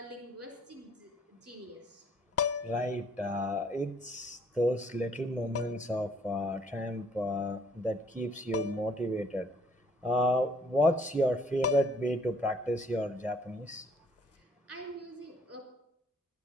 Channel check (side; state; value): both; normal; correlation 0.62